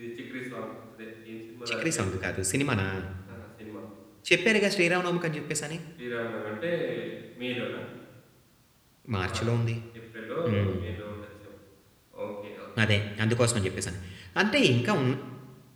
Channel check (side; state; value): both; identical; correlation 1.00